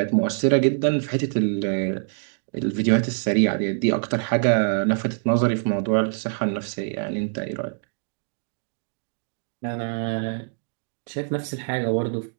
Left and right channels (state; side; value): silent; left; digital silence